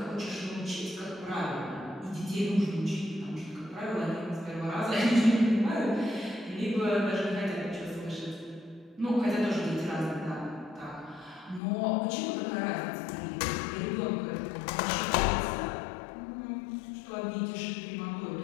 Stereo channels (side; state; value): right; drops out; at 11.6 s